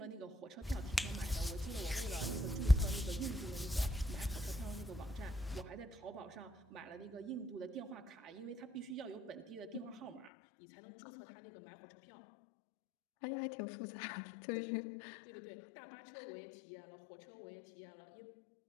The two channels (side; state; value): right; drops out; at 10.3 s